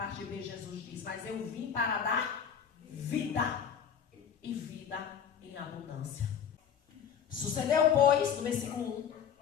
B, Jesus diz, mas eu vim para dar vida, e vida em abundância. Sucedeu, pois, no versículo 1,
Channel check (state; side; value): quieter; right; 7.9 dB